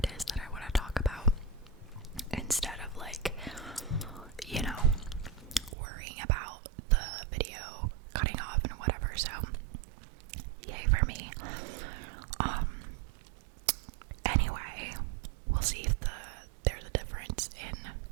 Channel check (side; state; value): left; drops out; at 5.8 s